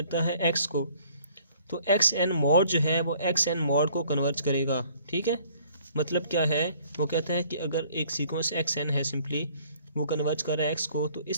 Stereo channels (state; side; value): inverted; both; correlation -0.58